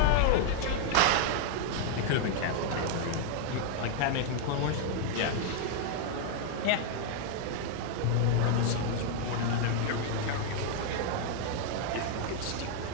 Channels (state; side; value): different; both; correlation 0.00